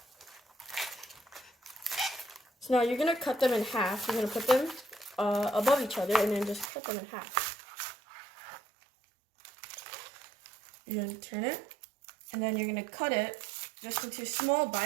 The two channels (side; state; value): left; drops out; at 6.7 s